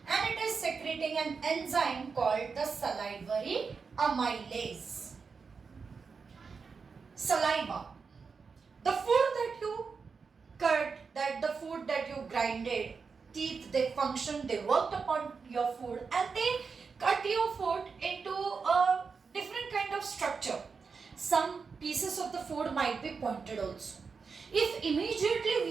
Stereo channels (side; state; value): left; quieter; 5.2 dB